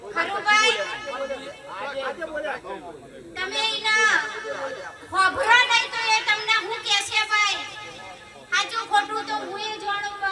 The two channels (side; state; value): both; identical; correlation 1.00